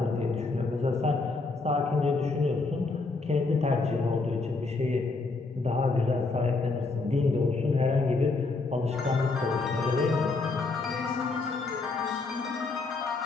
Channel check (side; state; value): right; quieter; 3.8 dB